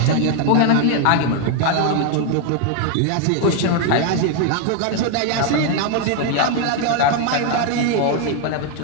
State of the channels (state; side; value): different; both; correlation 0.01